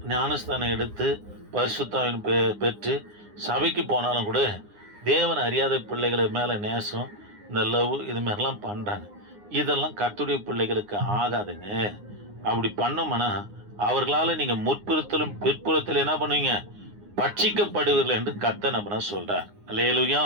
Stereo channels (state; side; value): late; left; 9.7 ms